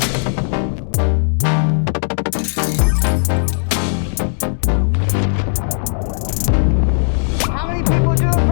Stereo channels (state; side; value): silent; right; digital silence